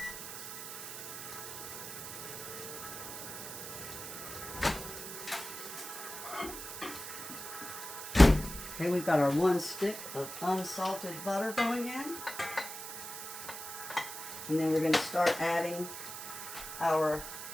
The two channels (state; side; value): noise; right; hiss, 8 dB below the sound